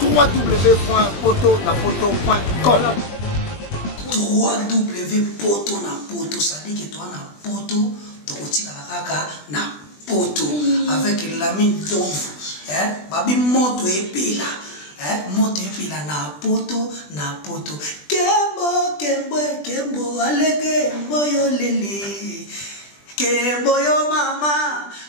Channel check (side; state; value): right; late; 20 ms